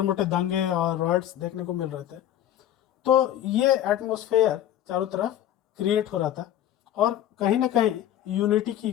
मोटे दंगे और रॉयट्स देखने को मिल रहे थे। तो ये एटमॉस्फेयर चारों तरफ क्रिएट हो रहा था, और कहीं ना कहीं यूनिटी की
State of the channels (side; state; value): right; quieter; 11.7 dB